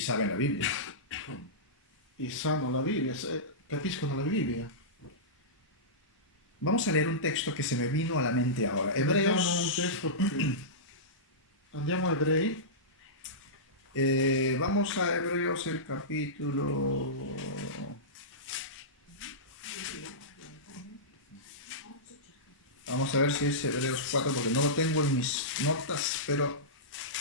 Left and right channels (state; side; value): normal; both; correlation -0.16